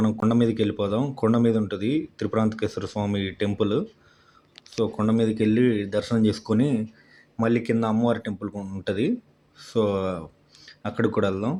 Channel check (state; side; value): identical; both; correlation 1.00